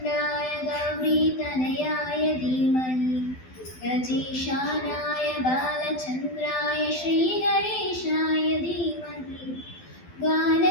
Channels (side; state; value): right; late; 12 ms